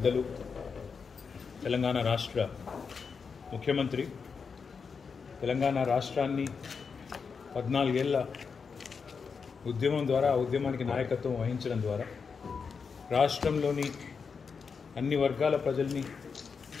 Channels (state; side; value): quieter; right; 5.6 dB